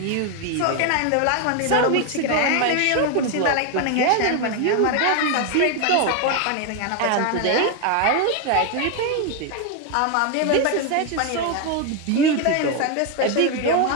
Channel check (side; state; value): both; different; correlation 0.01